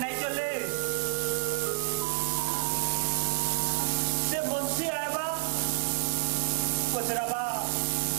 चले से मुंशी आएबा पचराबा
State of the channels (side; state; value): left; silent; 58 dB below the other